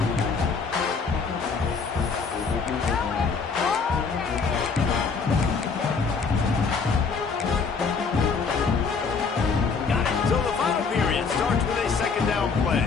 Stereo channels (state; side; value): quieter; right; 5.1 dB